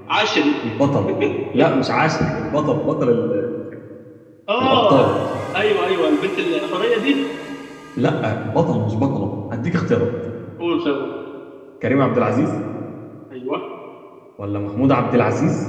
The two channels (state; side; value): identical; both; correlation 1.00